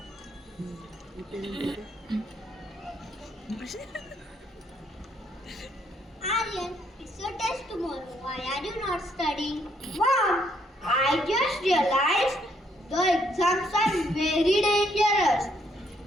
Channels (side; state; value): both; normal; correlation 0.71